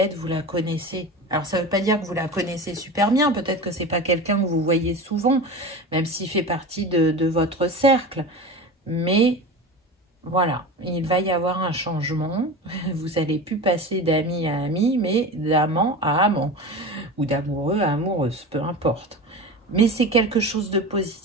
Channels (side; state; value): both; normal; correlation 0.29